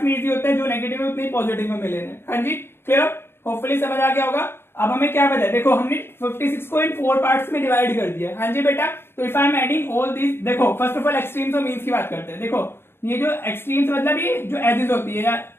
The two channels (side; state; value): right; late; 0.11 ms